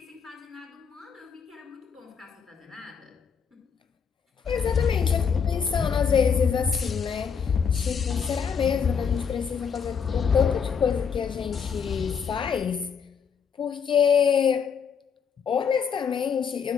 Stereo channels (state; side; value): quieter; right; 6.6 dB